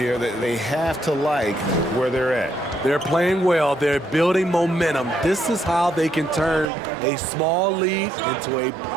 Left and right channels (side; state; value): left; drops out; at 6.7 s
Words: that they have to like where they're at. They're playing well. They're building momentum. This is how they can turn a small lead into a